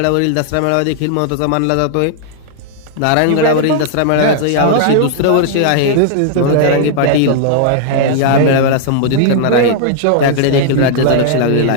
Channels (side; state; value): both; different; correlation -0.01